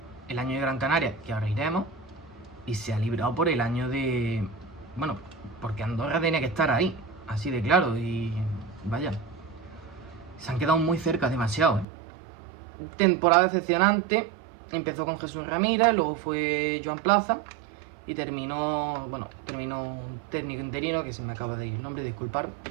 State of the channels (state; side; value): drops out; left; at 11.9 s